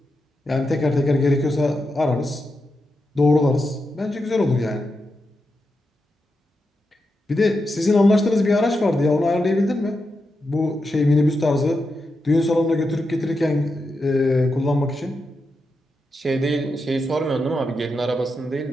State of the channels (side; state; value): both; normal; correlation 0.87